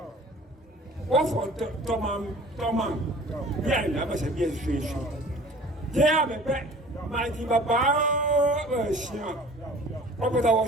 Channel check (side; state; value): both; normal; correlation 0.46